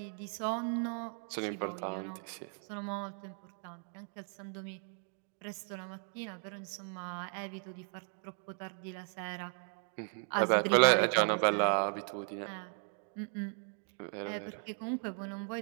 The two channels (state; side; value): silent; left; 53 dB below the other